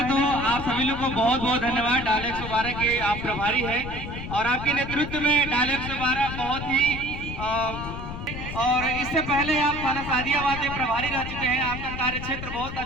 तो आप सभी लोग को बहुत बहुत धन्यवाद। डायल 112 के आप प्रभारी हैं और आपके नेतृत्व में डायल 112 बहुत ही और इससे पहले आप थाना सादियाबाद में प्रभारी रह चुके हैं। आपका कार्य क्षेत्र बहुत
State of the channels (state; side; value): noise; left; rumble, 8 dB below the sound